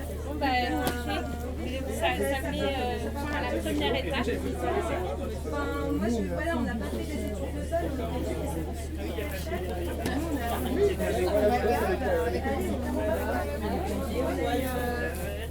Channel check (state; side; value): identical; both; correlation 1.00